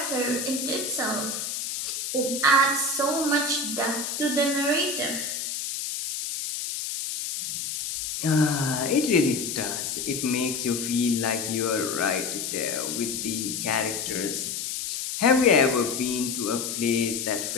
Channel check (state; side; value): noise; left; hiss, 4 dB below the sound